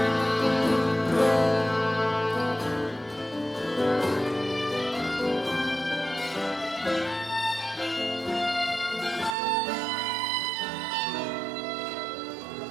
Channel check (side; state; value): left; drops out; at 9.3 s